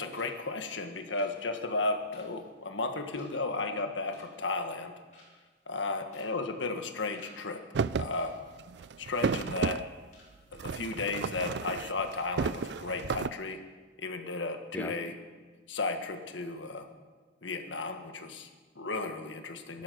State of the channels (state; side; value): normal; both; correlation -0.17